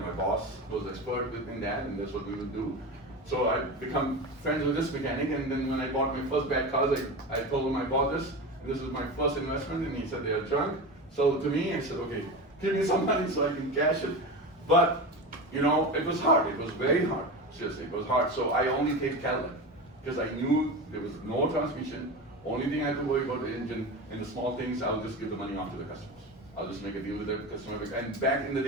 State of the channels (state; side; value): normal; both; correlation 0.25